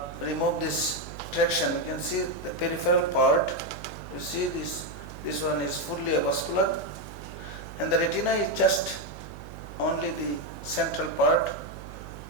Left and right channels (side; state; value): right; noise; hum, 13 dB below the sound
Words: remove this traction, you can see the peripheral part. You see this one is fully avascular, and the retina is just only the central part